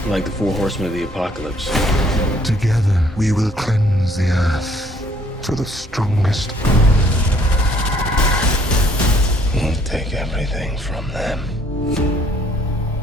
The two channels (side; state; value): both; normal; correlation 0.62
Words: Like the 4 horsemen of the apocalypse. Together, we will cleanse the earth to the strongest. We'll take everything from them.